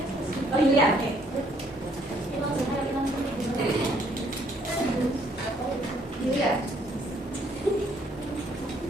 Oh iya. Iya.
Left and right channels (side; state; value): both; normal; correlation 0.66